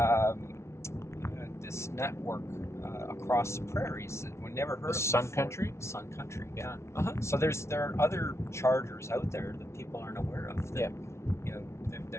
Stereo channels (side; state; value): right; late; 0.13 ms